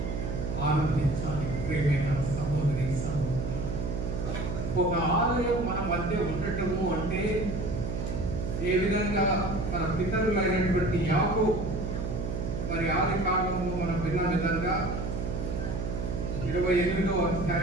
ఆనందించాలి. ప్రియమైన సహోదరి సహోదరులు, ఒక ఆలయం మన మధ్య ఉండటము అంటే ఏ విధంగా మన పితరులైనటువంటి యాకోబు మరి ఆది కాలంలో మనం విన్న విధంగా 28వ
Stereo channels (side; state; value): right; noise; hum, 3 dB below the sound